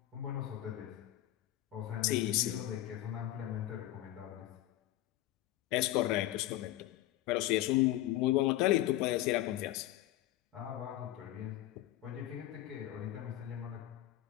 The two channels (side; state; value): right; quieter; 14.8 dB